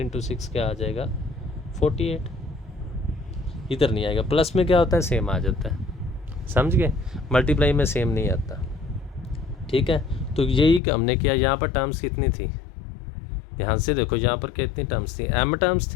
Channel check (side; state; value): right; drops out; at 10.8 s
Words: 6 क्या आ जाएगा? 48। इधर नहीं आएगा। प्लस में क्या होता है, सेम आ जाता है, समझ गए? मल्टीप्लाई में सेम नहीं आता, ठीक है। तो यही हमने किया। यहाँ पर टर्म्स कितनी थी, ध्यान से देखो, यहाँ पर कितनी टर्म्स थी? m टर्म्स